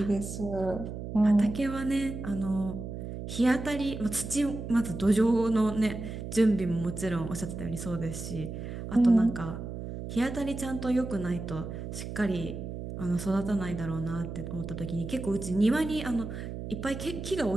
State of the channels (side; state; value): right; noise; hum, 7 dB below the sound